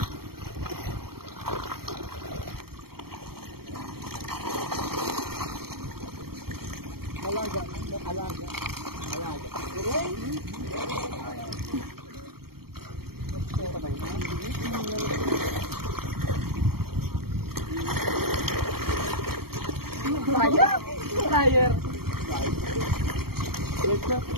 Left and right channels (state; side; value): late; left; 0.95 ms